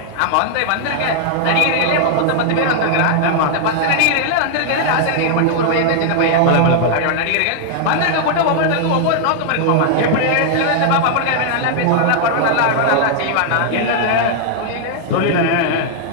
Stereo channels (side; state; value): both; different; correlation 0.00